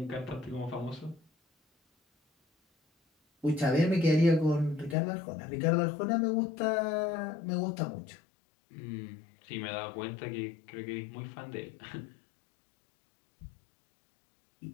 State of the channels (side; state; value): right; drops out; at 5.0 s